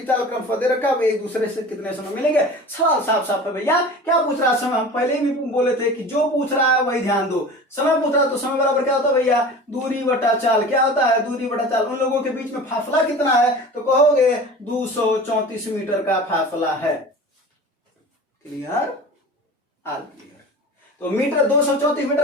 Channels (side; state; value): both; normal; correlation 0.37